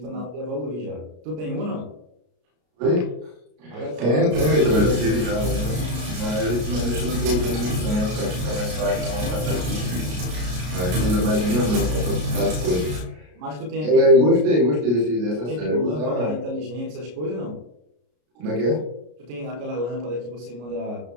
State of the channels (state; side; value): late; left; 33 ms